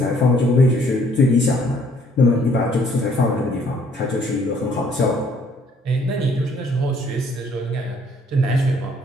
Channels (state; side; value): normal; both; correlation 0.62